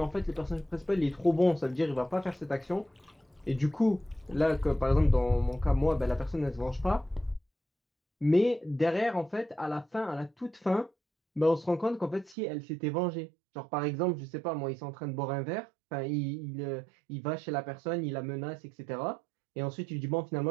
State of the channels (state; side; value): drops out; left; at 12.4 s